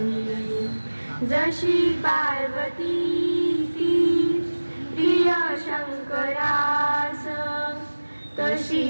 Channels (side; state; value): both; inverted; correlation -1.00